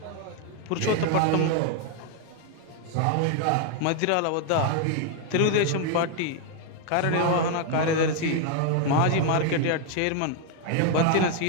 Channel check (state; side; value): different; both; correlation 0.00